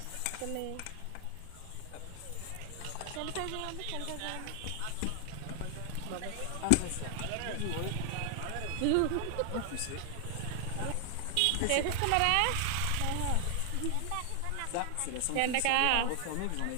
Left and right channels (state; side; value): different; both; correlation 0.00